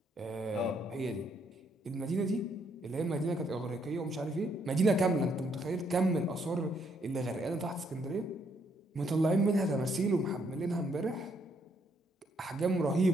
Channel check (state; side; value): normal; both; correlation 0.72